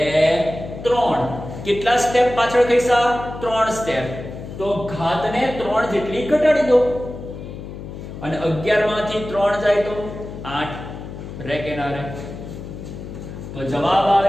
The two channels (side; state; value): left; noise; hum, 11 dB below the sound